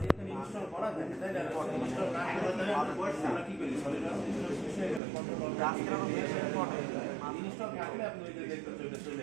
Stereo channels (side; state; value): left; drops out; at 5.0 s